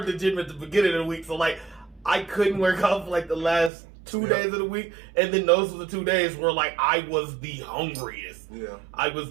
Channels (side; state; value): left; drops out; at 3.7 s